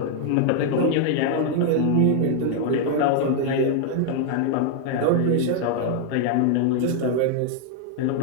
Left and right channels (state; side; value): different; both; correlation 0.00